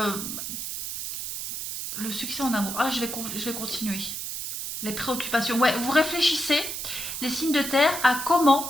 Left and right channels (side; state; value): right; noise; hiss, 5 dB below the sound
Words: succès en amour. Ah, je vais continuer. Les préoccupations. Ouais, vous réfléchissez, les signes de terre, à